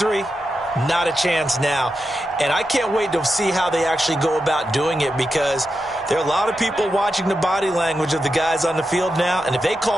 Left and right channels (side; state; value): both; normal; correlation 0.88